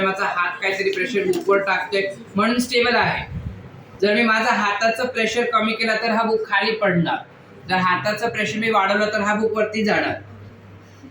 माझा हात काहीतरी प्रेशर बुकवर टाकतोय म्हणून स्टेबल आहे। जर मी माझा हाताचं प्रेशर कमी केला तर हा बुक खाली पडणार, जर हाताचं प्रेशर मी वाढवलं तर हा बुक वरती जाणार।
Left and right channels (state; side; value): identical; both; correlation 1.00